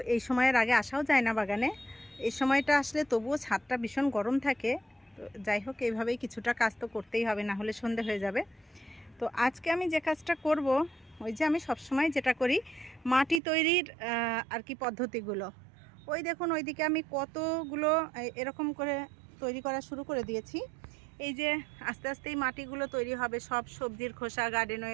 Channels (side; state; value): left; drops out; at 13.4 s